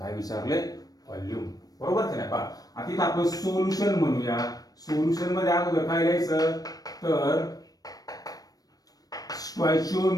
विचारले व्हॉल्यूम बरोबर की नाही आता इथं आपण सोल्युशन म्हणूया. सोल्युशन मध्ये अगोदर काय लिहायचं तर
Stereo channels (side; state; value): right; late; 0.18 ms